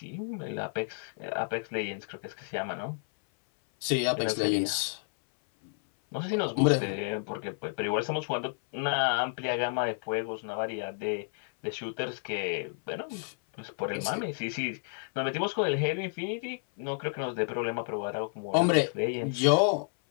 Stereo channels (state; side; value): silent; right; 57 dB below the other